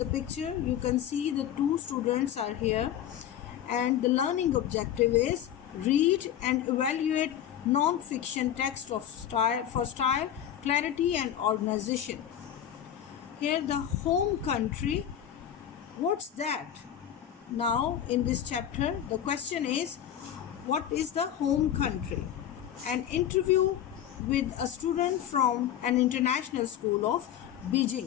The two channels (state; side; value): quieter; right; 10.3 dB